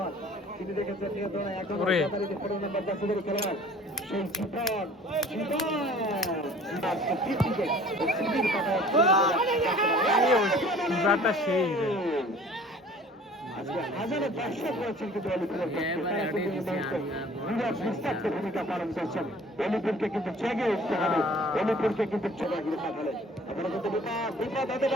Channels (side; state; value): both; normal; correlation 0.50